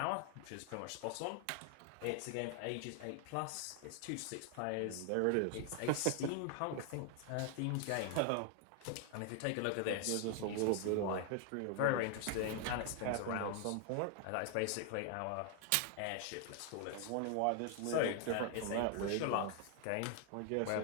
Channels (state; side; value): different; both; correlation 0.00